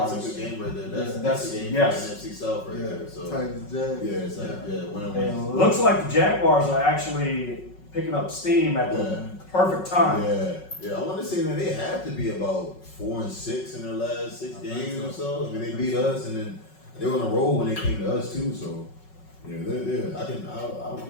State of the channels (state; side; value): late; right; 5.4 ms